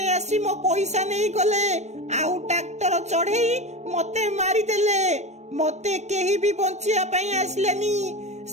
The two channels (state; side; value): late; left; 0.33 ms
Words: ଆସି ମୋ ପଇସା ନେଇ ଗଲେ ଆଉ ଟ୍ରାକ୍ଟର ଚଢେଇ ମତେ ମାରିଦେଲେ। ମତେ କେହି ବି ବଞ୍ଚିବା ପାଇଁ ଆସିଲେନି।